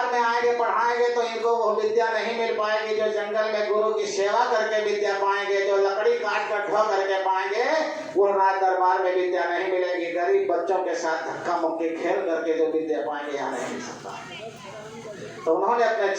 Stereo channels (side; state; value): both; identical; correlation 1.00